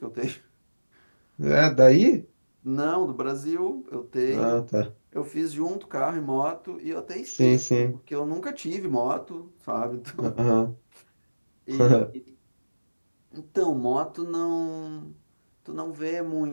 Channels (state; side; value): inverted; both; correlation -1.00